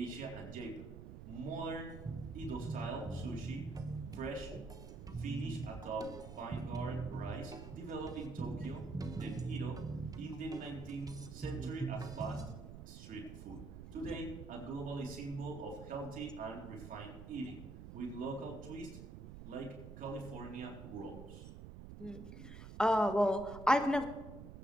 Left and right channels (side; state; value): right; noise; rumble, 11 dB below the sound